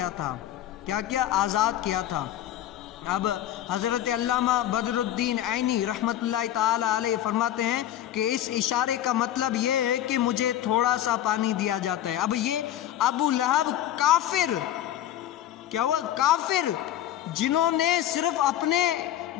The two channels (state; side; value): quieter; right; 12.1 dB